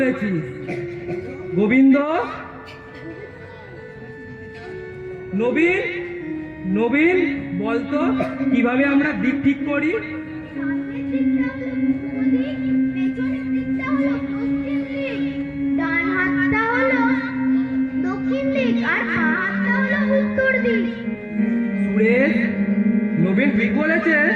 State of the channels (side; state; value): both; identical; correlation 1.00